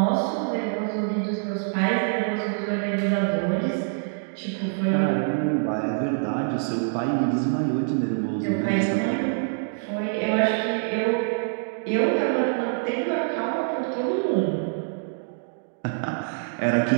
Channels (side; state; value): left; silent; digital silence